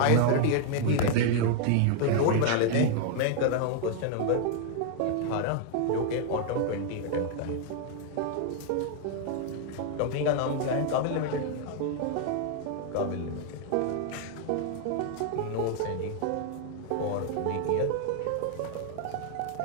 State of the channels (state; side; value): different; both; correlation 0.00